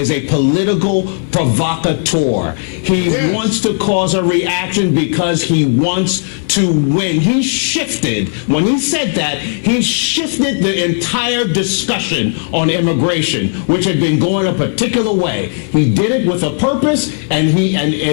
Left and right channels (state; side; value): silent; right; digital silence